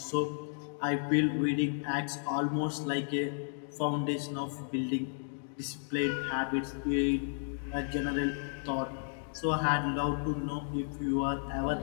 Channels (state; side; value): silent; right; digital silence